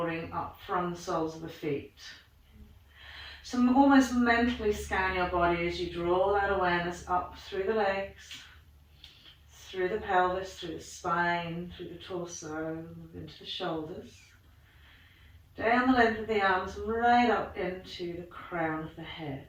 up from the soles of the feet. So almost mentally scan your body as you draw that awareness up through the legs, through the pelvis, through the spine, through the torso, into the shoulders, down the length of the arms, right up into the crown of the head.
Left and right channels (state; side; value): identical; both; correlation 1.00